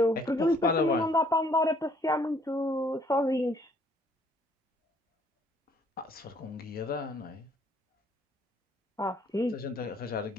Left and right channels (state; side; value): normal; both; correlation 0.63